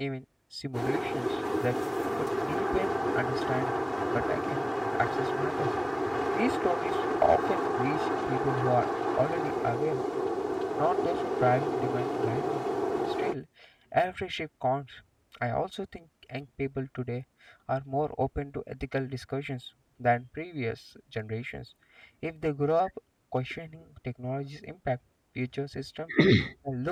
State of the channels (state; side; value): identical; both; correlation 1.00